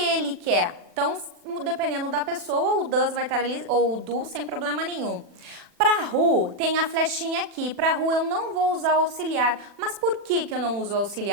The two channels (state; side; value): late; left; 40 ms